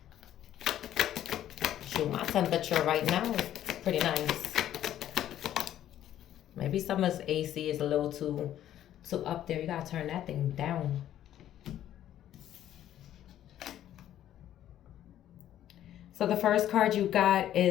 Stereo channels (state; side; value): quieter; right; 11.8 dB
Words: Shoot, my temperature right now is pretty nice. Maybe someone's AC is a little too up there. You gotta turn that thing down. So the first card you got